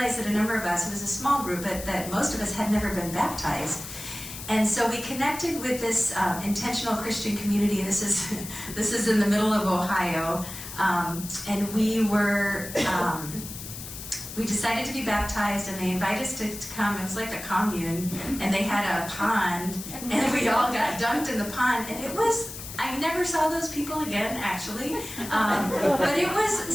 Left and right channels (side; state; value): left; noise; hiss, 11 dB below the sound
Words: that a number of us, it was a small group, but that most of us had never been baptized. And so we connected with this intentional Christian community. This is in the middle of Ohio, and we decided to be baptized, and they invited us to come. It was like a commune, and they had a pond, and we all got dunked in the pond, and I never saw those people again, actually, but it was